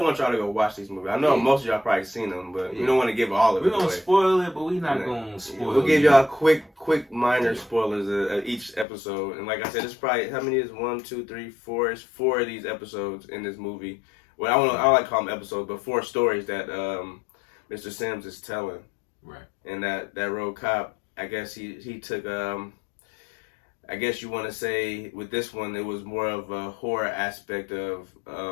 want y'all to go watch these movies. I know most of y'all probably seen them, but we don't want to give all of it away. We're gonna spoil it, but we're not gonna spoil it. We'll give y'all quick minor spoilers of each episode. And like I said, it's probably, how many is 1, 2, 3, 4? It's 4 of these episodes in this movie. Well, I don't like to call them episodes, but 4 stories that Mr. Sims is telling. Right. And that road cop, I guess he took, I guess you want to say with this one, it was more of a horror aspect of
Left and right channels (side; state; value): right; drops out; at 8.8 s